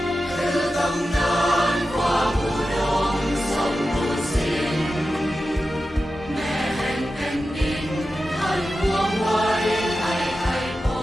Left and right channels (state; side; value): normal; both; correlation 0.92